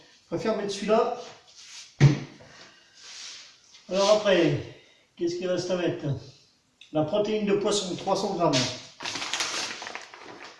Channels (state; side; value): identical; both; correlation 1.00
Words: préfère mettre celui-là. Alors après, qu'est-ce qu'il reste à mettre? La protéine de poisson, 300 grammes.